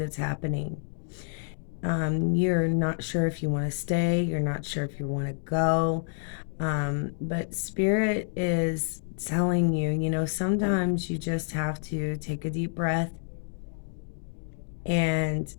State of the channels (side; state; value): right; silent; 59 dB below the other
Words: happening. You're not sure if you want to stay, you're not sure if you want to go, but Spirit is telling you, sometimes you just have to take a deep breath and